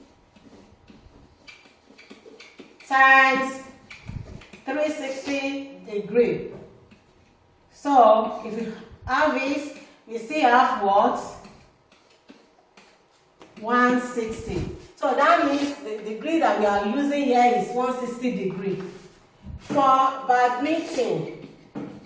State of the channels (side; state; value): both; identical; correlation 1.00